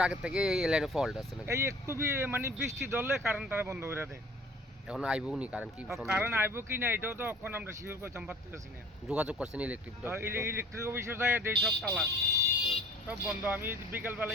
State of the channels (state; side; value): normal; both; correlation 0.50